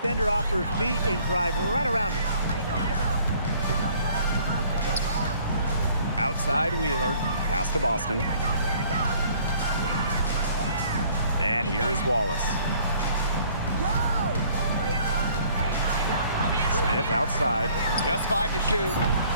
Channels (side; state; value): both; inverted; correlation -0.58